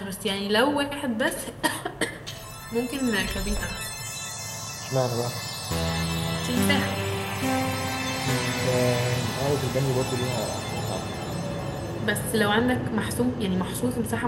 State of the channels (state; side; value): identical; both; correlation 1.00